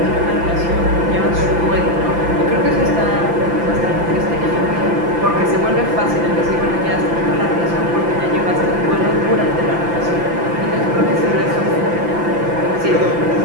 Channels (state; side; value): late; left; 5.9 ms